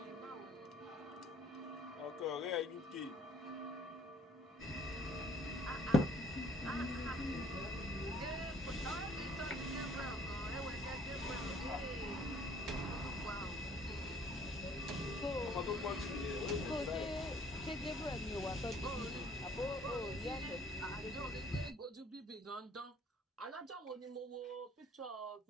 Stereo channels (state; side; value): normal; both; correlation 0.58